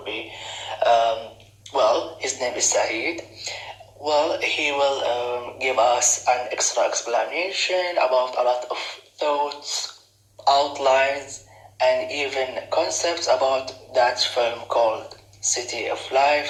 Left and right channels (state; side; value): identical; both; correlation 1.00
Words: be, his name is Saeed. Well, he will give us an extra explanation about a lot of thoughts, outlines, and even concepts about that film called City of